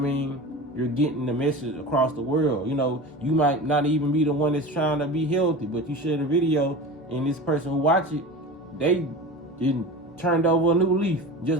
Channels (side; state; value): both; normal; correlation 0.32